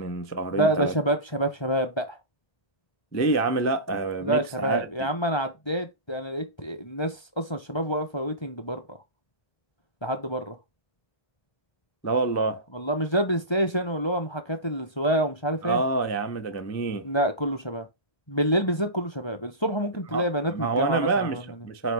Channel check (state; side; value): late; right; 1.3 ms